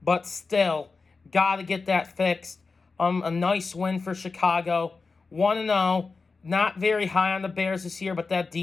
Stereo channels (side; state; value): right; quieter; 4.3 dB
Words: but still, got to get that fixed. A nice win for Chicago. 1-0. Not very high on the Bears this year, but that